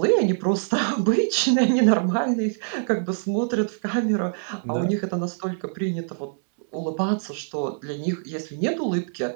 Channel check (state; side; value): silent; left; 62 dB below the other